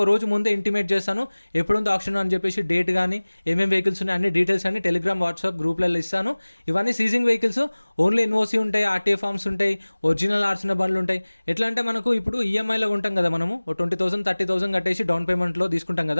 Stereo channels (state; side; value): inverted; both; correlation -1.00